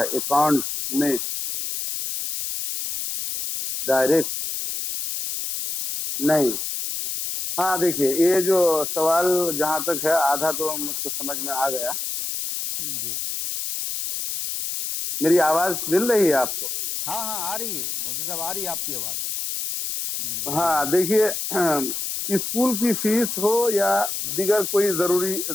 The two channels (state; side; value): noise; left; hiss, 4 dB below the sound